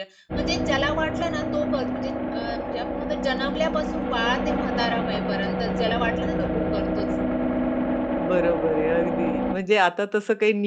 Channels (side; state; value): both; identical; correlation 1.00